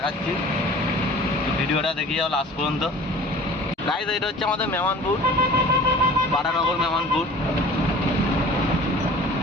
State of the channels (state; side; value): normal; both; correlation 0.44